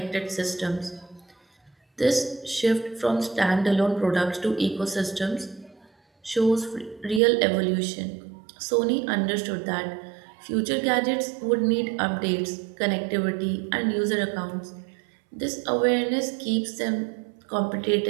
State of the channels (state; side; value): drops out; left; at 7.2 s